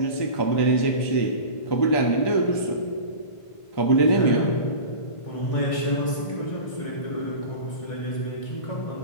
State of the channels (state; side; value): late; right; 1.5 ms